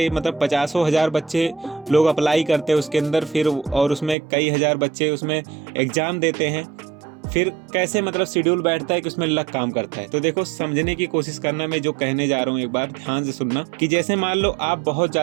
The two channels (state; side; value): drops out; left; at 4.2 s